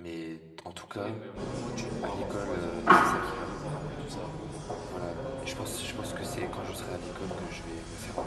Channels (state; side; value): identical; both; correlation 1.00